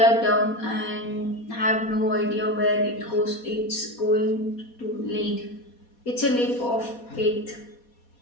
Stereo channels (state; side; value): late; right; 4.2 ms